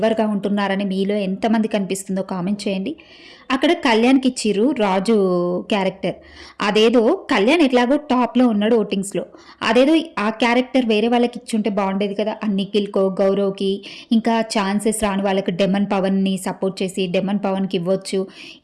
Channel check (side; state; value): both; identical; correlation 1.00